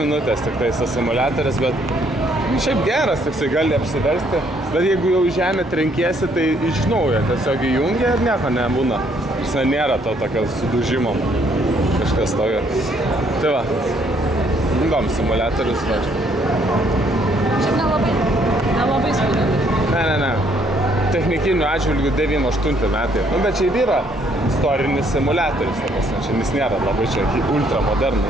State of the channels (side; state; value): both; normal; correlation 0.67